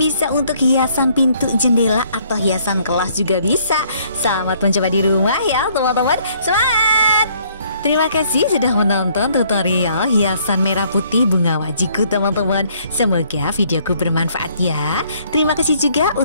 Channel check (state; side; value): inverted; both; correlation -0.64